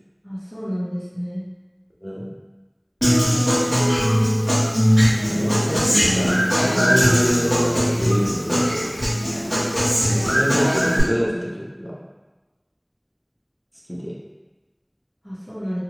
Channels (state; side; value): identical; both; correlation 1.00